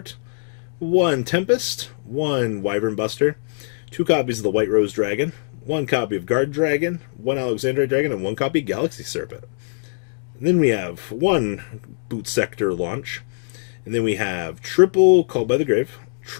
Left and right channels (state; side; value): silent; right; digital silence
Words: 1 Tempest, 1 Wyvern Buster, 2 copies of the White Rose Dragon, 1 copy of Guard Dragon, 1 Alexandrite Dragon, and 1 copy of Galaxy Serpent. And then we have 1 Boot Sector Launch, and then we have triple Called by the Grave,